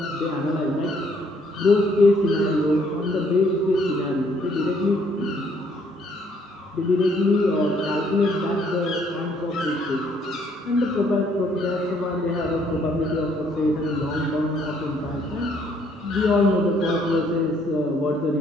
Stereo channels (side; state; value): both; normal; correlation 0.66